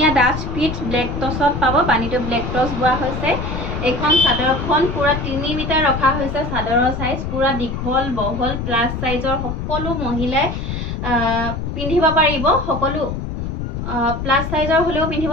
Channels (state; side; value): noise; left; rumble, 5 dB below the sound